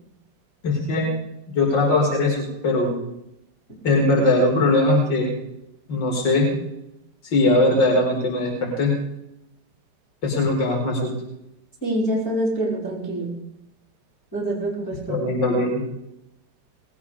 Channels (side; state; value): right; late; 5.6 ms